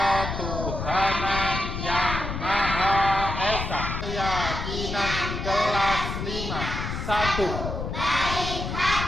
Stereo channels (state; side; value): noise; left; rumble, 4 dB below the sound